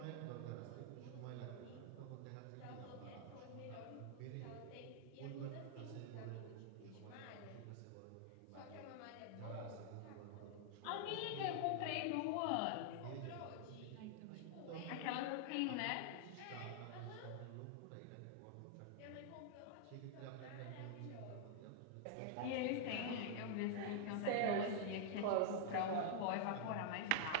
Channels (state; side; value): different; both; correlation -0.01